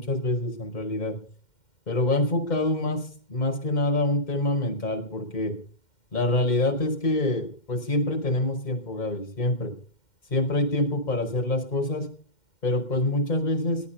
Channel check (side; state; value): right; late; 2.1 ms